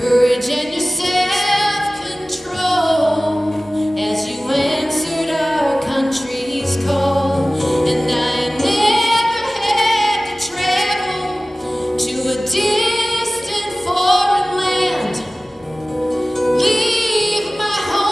and your self-control as you answered our country's call. And I never had to travel to a distant foreign land, leave my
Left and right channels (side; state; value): both; normal; correlation 0.98